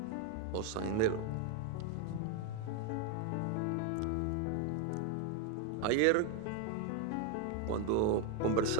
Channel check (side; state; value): both; different; correlation 0.01